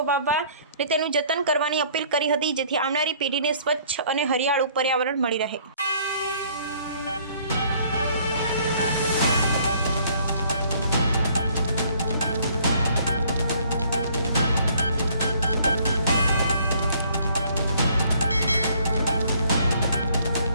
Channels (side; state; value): both; inverted; correlation -0.60